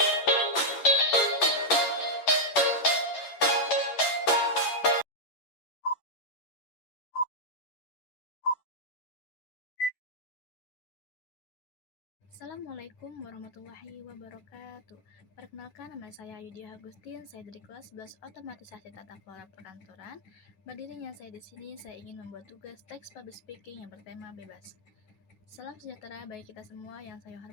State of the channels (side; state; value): right; late; 11 ms